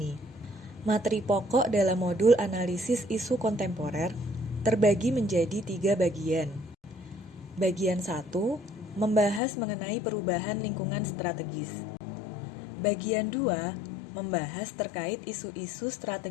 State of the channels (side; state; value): right; drops out; at 9.4 s